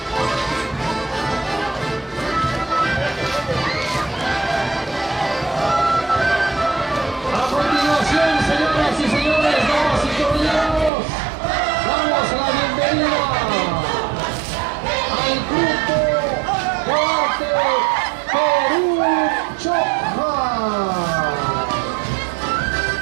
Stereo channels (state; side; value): drops out; left; at 10.9 s